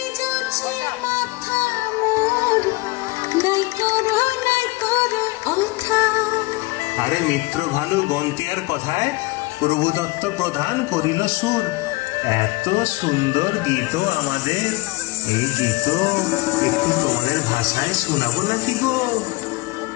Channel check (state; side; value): quieter; right; 22.3 dB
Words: আরে মিত্র ভালু গন্তিয়ার কথায় প্রভুদত্ত প্রধান করিল সুর। এত সুন্দর গীত আমাদের, এই গীত একটু তোমাদের ভাষায় শোনাবো নাকি গো?